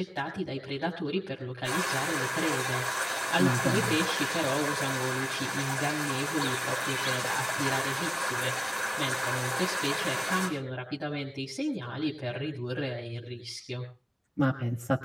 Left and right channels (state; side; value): identical; both; correlation 1.00